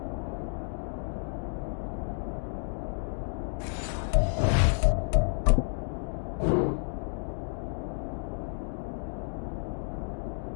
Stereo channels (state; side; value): silent; right; digital silence